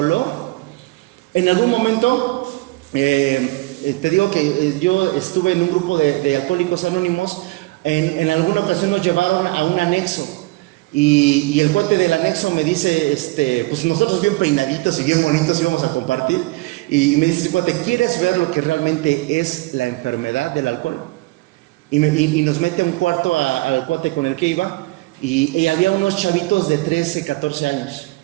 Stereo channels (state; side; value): quieter; left; 21.7 dB